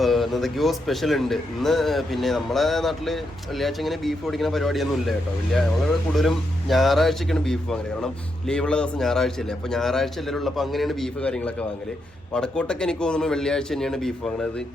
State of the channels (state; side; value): normal; both; correlation 0.82